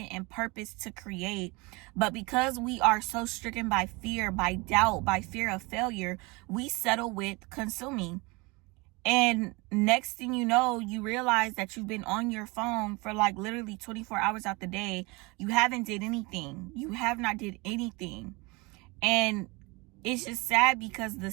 and purposed to create. But because we are so stricken by fear, by doubt, by fear of failure, we settle with consuming. And next thing you know, you realize that you've been on your phone for like literally 24 hours out the day. You haven't did anything. You have not did anything. And it's just sad because the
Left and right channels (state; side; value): quieter; left; 26.0 dB